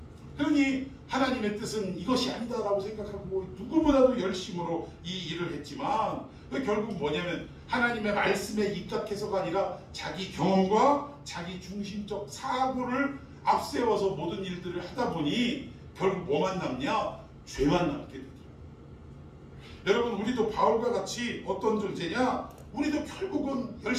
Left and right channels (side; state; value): both; identical; correlation 1.00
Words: 그러니 하나님의 뜻은 이것이 아니다라고 생각하고 누구보다도 열심으로 이 일을 했지만 결국 뭐냐면 하나님의 말씀에 입각해서가 아니라 자기 경험과 자기 중심적 사고를 앞세워서 모든 일들을 하다 보니 결국 뭐만 남냐? 죄만 남게 되더라고요. 여러분, 우리도 바울과 같이 어떤 존재냐? 우리도 결국은